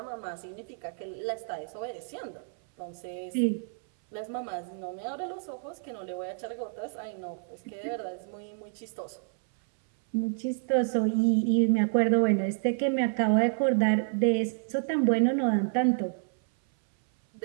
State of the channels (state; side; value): silent; left; 58 dB below the other